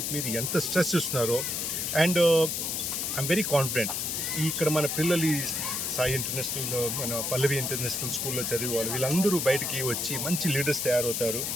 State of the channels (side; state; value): left; noise; hiss, 1 dB below the sound